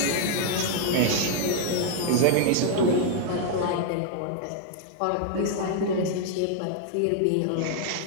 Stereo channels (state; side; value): different; both; correlation 0.00